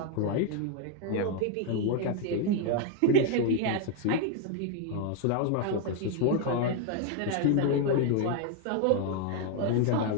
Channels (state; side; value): different; both; correlation 0.01